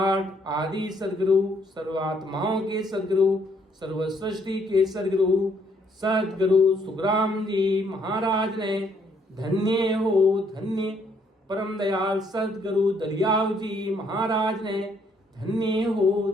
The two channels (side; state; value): both; normal; correlation 0.68